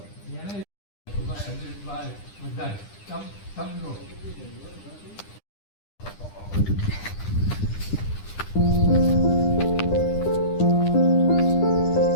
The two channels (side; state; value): right; late; 9.9 ms